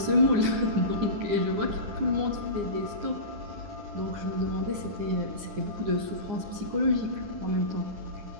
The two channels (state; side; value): late; left; 9.7 ms